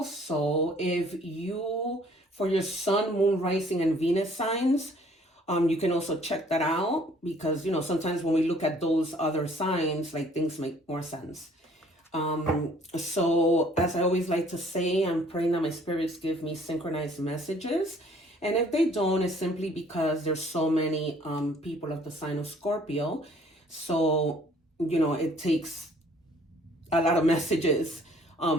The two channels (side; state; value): both; normal; correlation 0.58